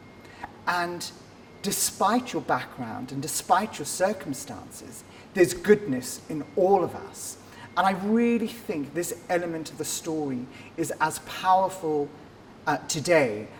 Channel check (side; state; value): both; identical; correlation 1.00